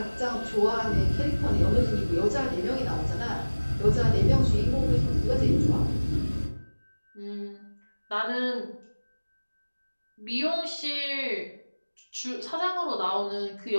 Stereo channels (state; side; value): inverted; both; correlation -1.00